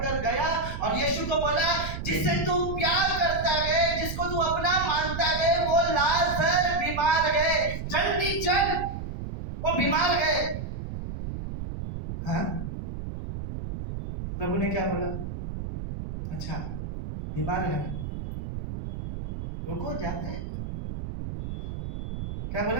गया और यीशु को बोला, जिससे तू प्यार करता है, जिसको तू अपना मानता है, वो लाजर बीमार है, जल्दी चल। वो बीमार है। हाँ, प्रभु ने क्या बोला? अच्छा, बीमार है, रुको, जाते हैं। क्या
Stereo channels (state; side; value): noise; right; rumble, 6 dB below the sound